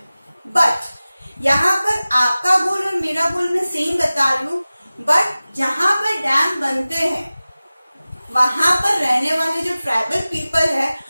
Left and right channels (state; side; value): inverted; both; correlation -0.97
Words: बट यहाँ पर आपका गोल और मेरा गोल मैं सेम बता रही हूँ, बट जहां पर डैम बनते हैं वहां पर रहने वाले जो ट्राइबल पीपल है